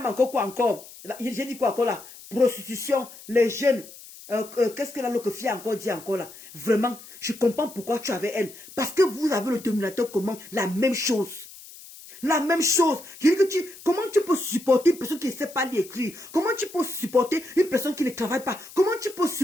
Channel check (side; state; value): left; noise; hiss, 18 dB below the sound